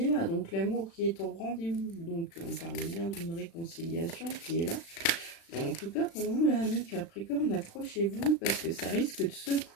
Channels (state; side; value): late; right; 36 ms